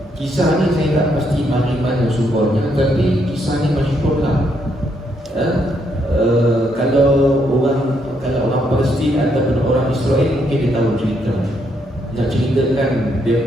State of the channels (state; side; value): normal; both; correlation 0.75